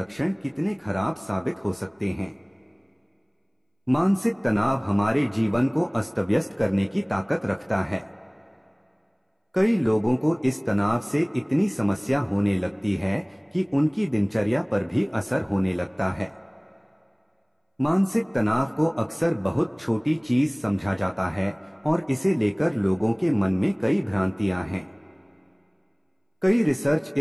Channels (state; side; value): identical; both; correlation 1.00